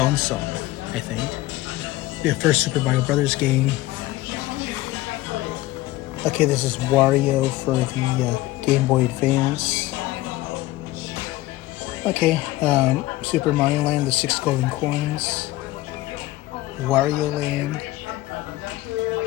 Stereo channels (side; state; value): right; quieter; 17.6 dB